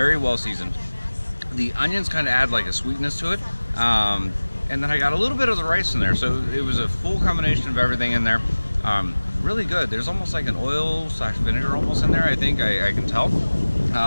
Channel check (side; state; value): both; inverted; correlation -1.00